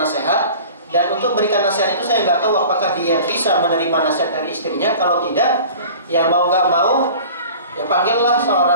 Dan untuk berikan nasihat itu saya nggak tahu apakah dia bisa menerima nasihat dari istrinya. Kalau tidak, ya mau nggak mau, ya panggillah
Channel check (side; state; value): both; inverted; correlation -0.42